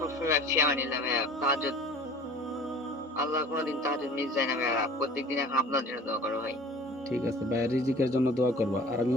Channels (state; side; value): normal; both; correlation 0.45